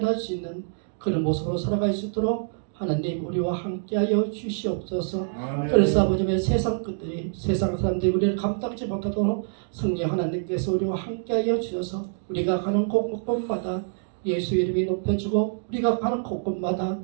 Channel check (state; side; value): silent; left; digital silence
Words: 수 있는 그런 모습으로 살아갈 수 있도록 하나님 우리와 함께하여 주시옵소서. 아멘. 그래서 아버지의 세상 끝들이 세상 사람들이 우리를 감당지 못하도록 성령 하나님께서 우리와 함께하여 주셔서 우리가 가는 곳곳마다 예수 이름이 높여지고 우리가 가는 곳곳마다